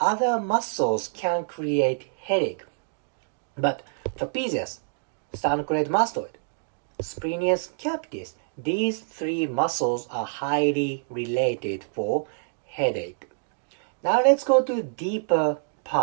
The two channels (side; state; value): left; silent; digital silence